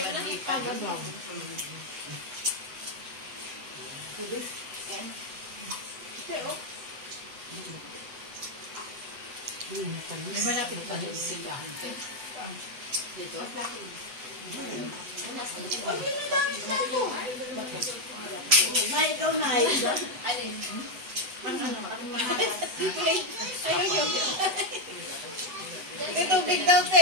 nagpagabaw. May malapit pa yung simbahan ko. Dito. Na ikaw na ito. Alin? May tubig daw te.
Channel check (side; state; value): left; late; 8.2 ms